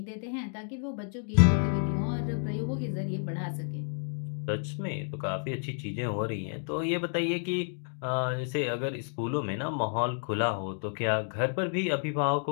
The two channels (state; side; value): silent; right; 57 dB below the other